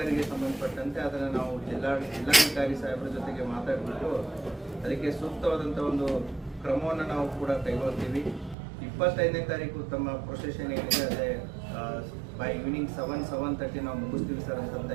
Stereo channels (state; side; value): drops out; left; at 8.6 s